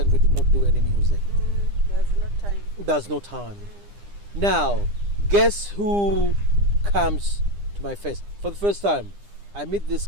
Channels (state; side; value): late; left; 9.9 ms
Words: we did not do any music. There's no time. Now, guess who comes to my face? For the first time, I meet this